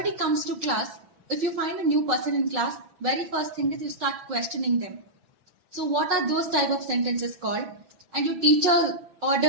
comes to class, if you find a new person in class, very first thing is you start questioning them. So what are those type of sentences called? And your teacher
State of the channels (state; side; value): late; left; 6.0 ms